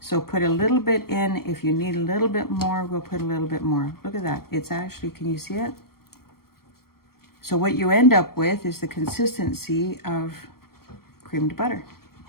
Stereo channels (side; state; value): right; late; 0.94 ms